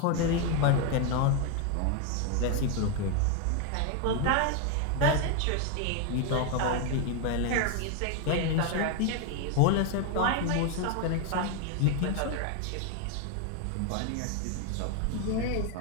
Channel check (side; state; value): both; different; correlation 0.01